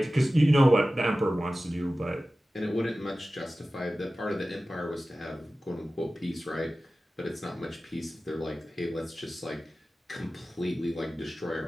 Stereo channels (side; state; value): both; normal; correlation 0.96